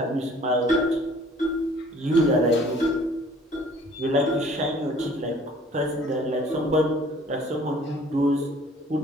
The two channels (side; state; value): both; normal; correlation 0.53